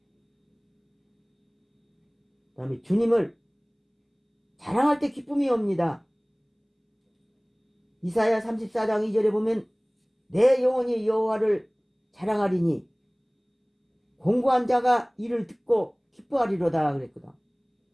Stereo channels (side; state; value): both; identical; correlation 1.00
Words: 그 다음에 주님을 자랑할 때 기쁨이 옵니다. 이사야 34장 2절에 보면 내 영혼이 여호와를 자랑하리니 공고한 자가 이를 듣고 기뻐하리로다 그랬거든.